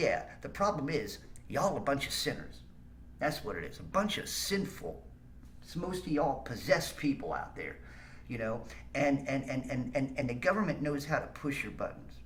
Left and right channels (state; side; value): identical; both; correlation 1.00